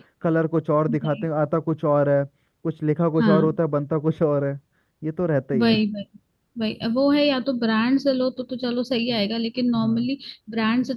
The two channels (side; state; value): both; identical; correlation 1.00